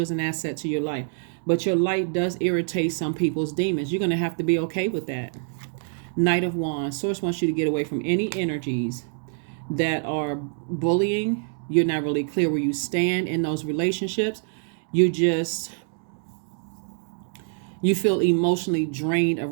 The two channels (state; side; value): silent; left; 61 dB below the other